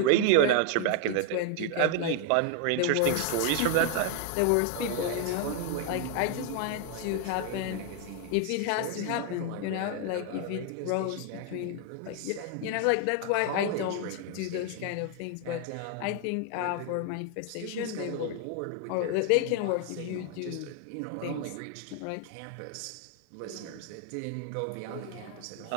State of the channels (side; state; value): both; different; correlation 0.00